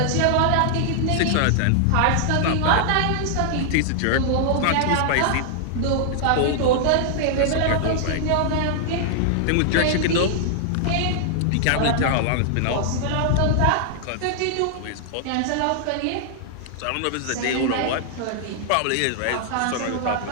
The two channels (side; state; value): both; different; correlation -0.01